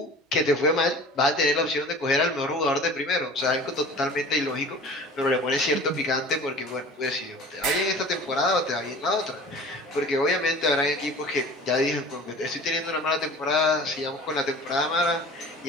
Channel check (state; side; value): normal; both; correlation 0.42